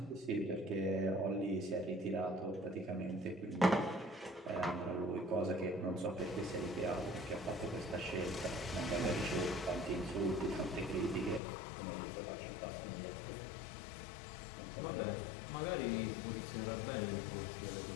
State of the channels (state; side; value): drops out; right; at 11.4 s